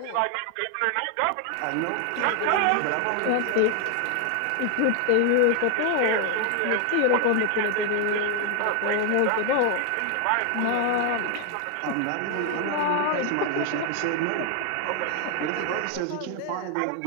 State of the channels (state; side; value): different; both; correlation 0.00